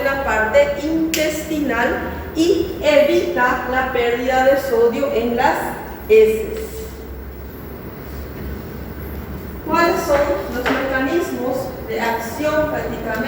la parte intestinal y evita la pérdida de sodio en las heces. ¿Cuáles son los mecanismos de acción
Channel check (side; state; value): both; identical; correlation 1.00